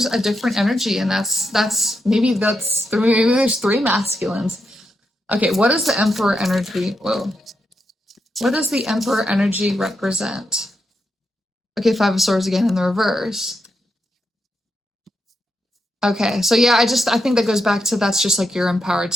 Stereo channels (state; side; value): normal; both; correlation 0.83